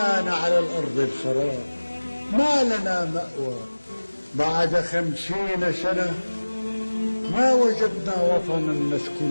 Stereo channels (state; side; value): inverted; both; correlation -1.00